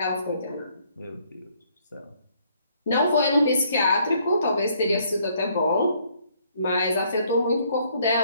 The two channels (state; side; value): inverted; both; correlation -0.66